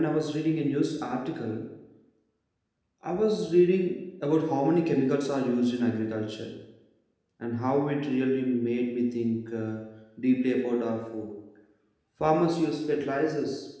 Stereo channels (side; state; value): both; identical; correlation 1.00